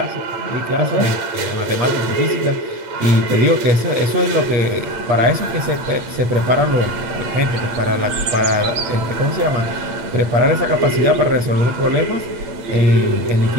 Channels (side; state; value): left; late; 8.5 ms